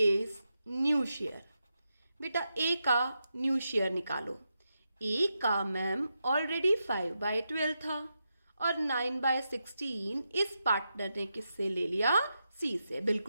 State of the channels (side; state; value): both; inverted; correlation -0.87